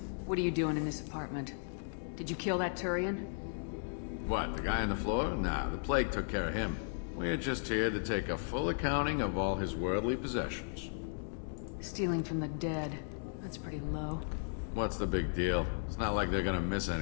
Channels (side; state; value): right; silent; digital silence